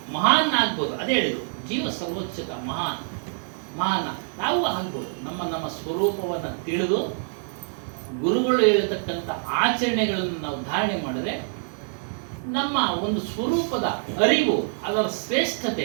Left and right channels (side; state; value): left; silent; digital silence